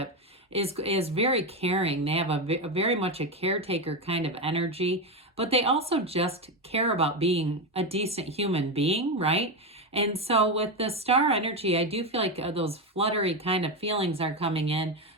is very caring. They have a very much a caretaker kind of energy, but they also just care about being a decent human being, right? And so with the star energy, I do feel like those fluttery kind of feelings are coming in,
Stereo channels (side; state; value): both; normal; correlation 0.12